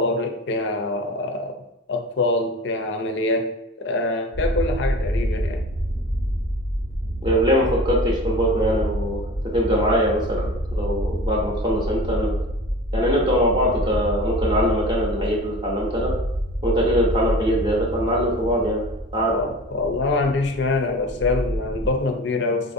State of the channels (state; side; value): normal; both; correlation 0.37